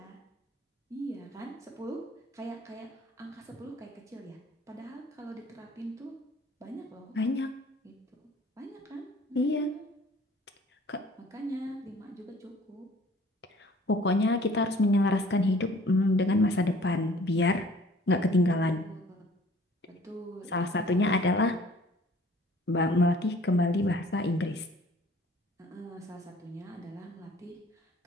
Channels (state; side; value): normal; both; correlation 0.53